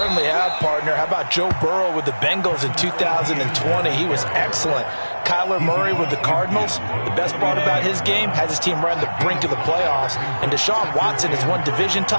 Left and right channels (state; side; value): inverted; both; correlation -1.00